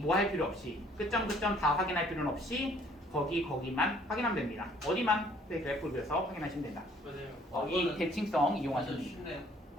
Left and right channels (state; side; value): normal; both; correlation 0.59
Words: 뭐 할 필요 없이 끝점 다 확인할 필요는 없이 거기만 확인하면 됩니다. 어디만 그래프를 그려서 확인하시면 된다. 맞아요. 이 대칭성 완전 이용하시면 됩니다.